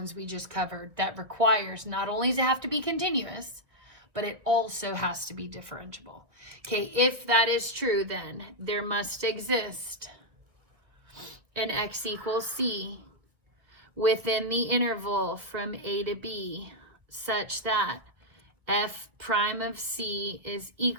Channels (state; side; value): late; left; 1.8 ms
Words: we just covered that requires not only to have to be continuous, but it also has to be differentiable. Okay, if that is true, then there must exist an x equals c within the interval from a to b such that f prime of c is